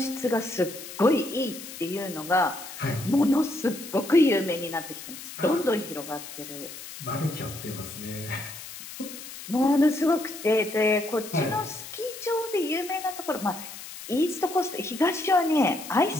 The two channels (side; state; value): left; noise; hiss, 12 dB below the sound